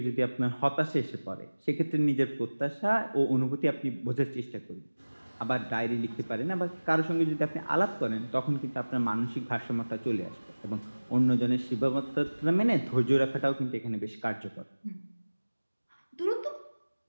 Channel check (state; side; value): inverted; both; correlation -1.00